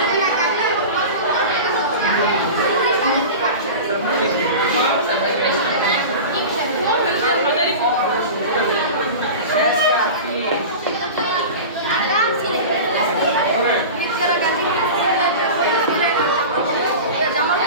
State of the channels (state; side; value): inverted; both; correlation -0.31